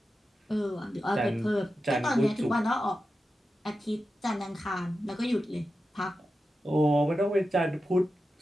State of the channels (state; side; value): normal; both; correlation 0.91